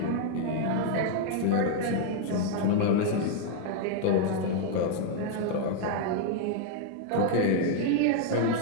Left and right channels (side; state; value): both; different; correlation 0.00